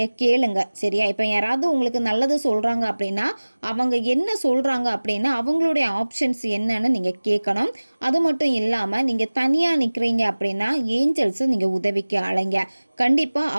கேளுங்க. சரியா? இப்போ யாராவது உங்களுக்கு நல்லது சொல்கிறாங்க அப்படின்னா அவங்க என்ன சொல்கிறாங்க அப்படின்னா அவங்களுடைய ஆப்ஷன்ஸ் என்னன்னு நீங்கள் கேட்கணும். அது மட்டும் இல்லாமல் நீங்கள் தனியாக நிற்கிறீங்க அப்படின்னா ஏஞ்சல்ஸை நீங்கள் உதவிக்கு அழைங்க. கண்டிப்பாக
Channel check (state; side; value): inverted; both; correlation -1.00